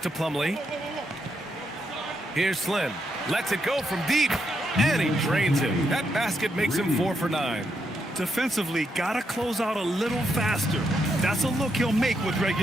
Plumlee. Here's Slim. Lets it go from deep. And he drains it. That basket makes him 4 for 9. Defensively, gotta close out a little faster. That's a look he'll make with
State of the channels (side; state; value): both; normal; correlation 0.80